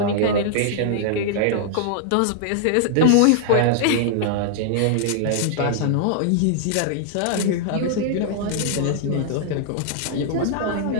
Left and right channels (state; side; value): different; both; correlation -0.01